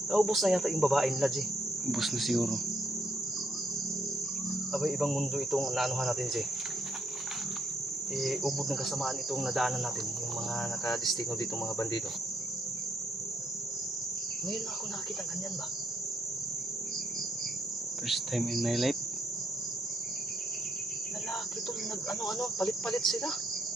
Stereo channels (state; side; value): normal; both; correlation 0.75